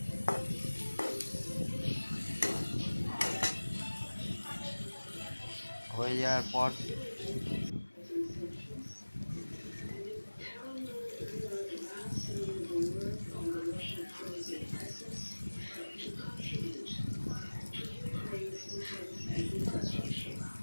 হয়ে যাওয়ার পর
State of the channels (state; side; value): inverted; both; correlation -1.00